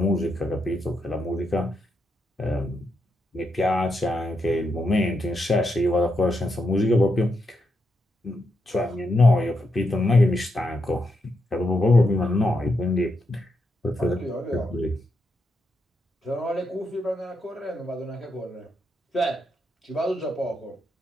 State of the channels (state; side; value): normal; both; correlation 0.82